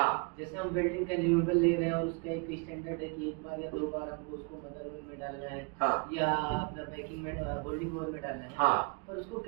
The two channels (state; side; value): quieter; left; 32.8 dB